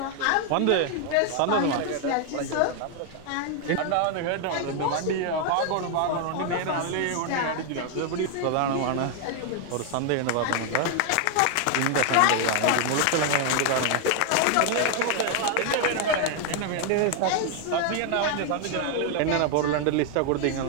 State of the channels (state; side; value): different; both; correlation 0.00